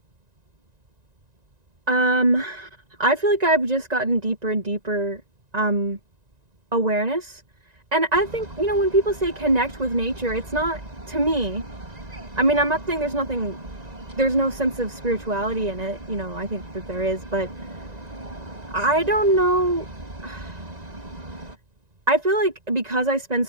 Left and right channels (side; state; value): left; late; 1.9 ms